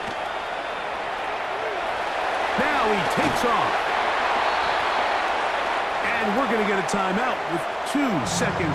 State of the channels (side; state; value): both; identical; correlation 1.00